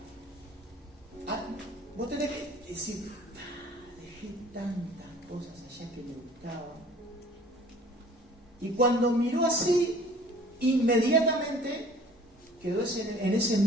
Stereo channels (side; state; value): both; normal; correlation 0.50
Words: vos tenés que decir: dejé tantas cosas allá que me gustaban. Y cuando miró así, inmediatamente quedó en ese